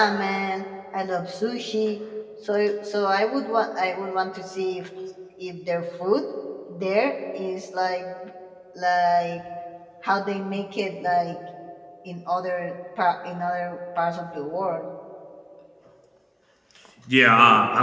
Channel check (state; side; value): identical; both; correlation 1.00